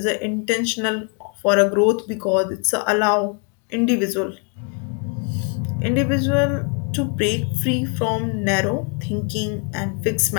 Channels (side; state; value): right; quieter; 37.8 dB